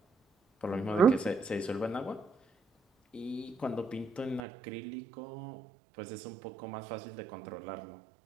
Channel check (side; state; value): left; drops out; at 4.4 s